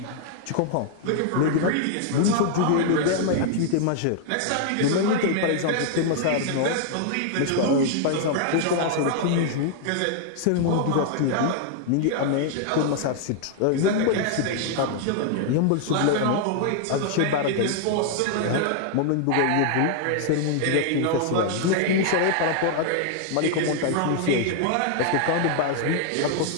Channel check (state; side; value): different; both; correlation 0.00